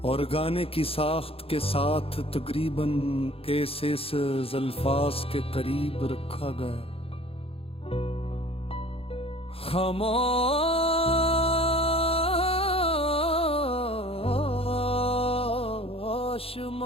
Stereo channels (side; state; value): right; late; 0.27 ms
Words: और गाने की साख्त के साथ तकरीबन ऐसे अल्फाज के करीब रखा गया। खामोश